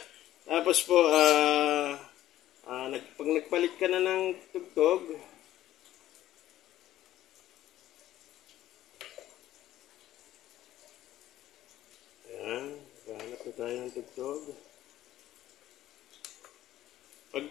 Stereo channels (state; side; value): quieter; right; 13.6 dB